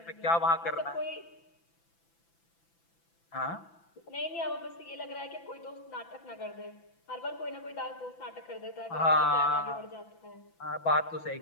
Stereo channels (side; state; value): right; late; 6.0 ms